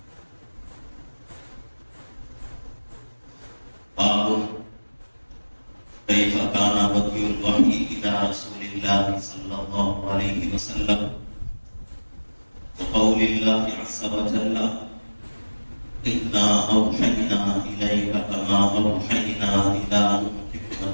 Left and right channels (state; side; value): inverted; both; correlation -1.00